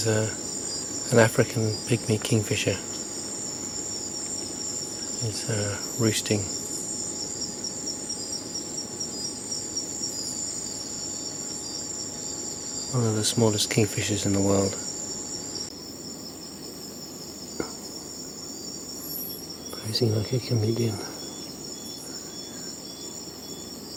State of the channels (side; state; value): both; identical; correlation 1.00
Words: an African pygmy kingfisher. It's roosting. One of the smallest kingfishers in the world. Posing like a chameleon.